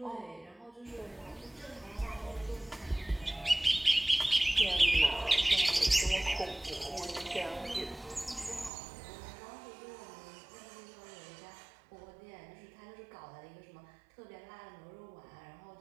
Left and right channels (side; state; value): left; drops out; at 8.7 s